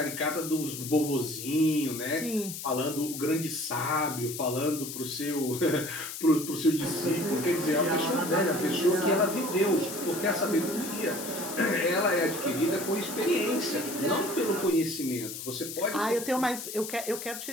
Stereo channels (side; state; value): left; noise; hiss, 8 dB below the sound